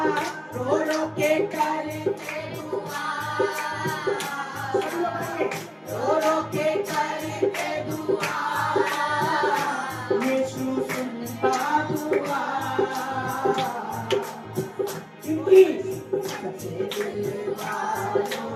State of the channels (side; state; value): both; identical; correlation 1.00